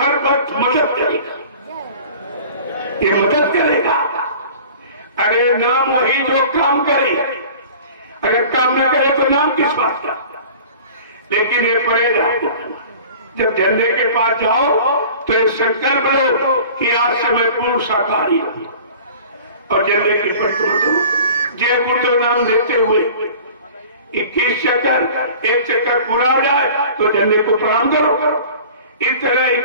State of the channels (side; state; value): both; inverted; correlation -0.43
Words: वक्त मदद करेगा। ये मदद करेगा। अरे नाम वही जो काम करे, अगर काम न करे तो नाम किस बात का? लेकिन ये परहेज आपको करना। जब झंडे के पास जाओ तो ये संकल्प लो कि आज से मैं पूर्ण शाकाहारी हूं और झंडे की परिक्रमा करो। जय गुरुदेव नाम लेते हुए 21 चक्कर, एक चक्कर पूरा हो जाए तो झंडे को प्रणाम करो। इस तरह